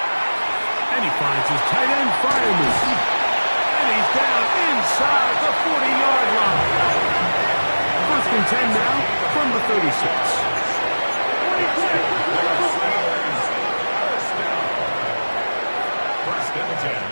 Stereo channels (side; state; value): both; inverted; correlation -1.00